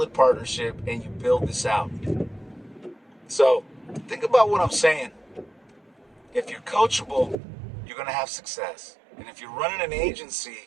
partnership and you build this out. So, think about what I'm saying. If you're coachable, you're going to have success. And if you're running an agency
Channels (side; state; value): left; drops out; at 7.4 s